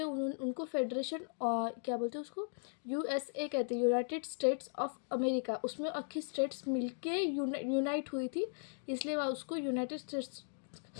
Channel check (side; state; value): right; silent; digital silence